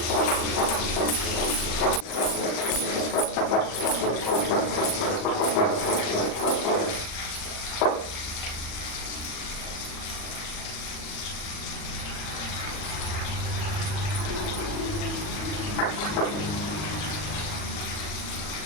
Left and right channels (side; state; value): right; late; 40 ms